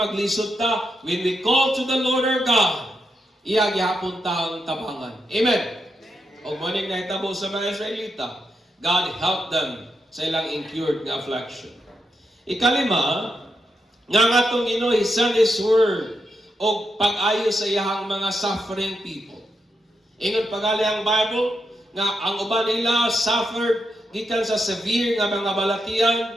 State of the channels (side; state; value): both; normal; correlation 0.84